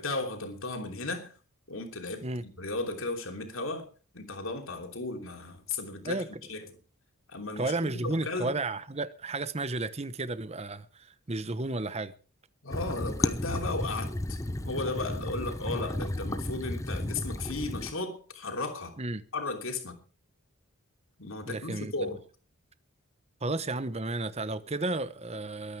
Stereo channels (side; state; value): both; normal; correlation 0.31